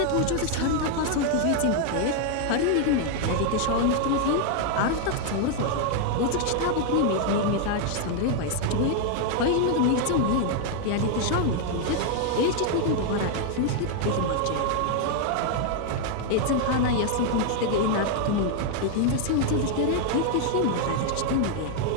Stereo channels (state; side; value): different; both; correlation 0.00